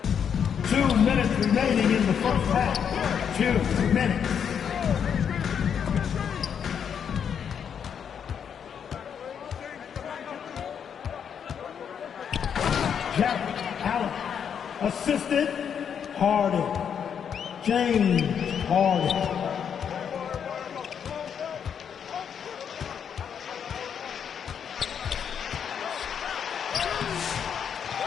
2 minutes remaining in the first half. 2 minutes. Jack Allen. Assisted Harden. James Harden.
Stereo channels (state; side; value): quieter; right; 7.8 dB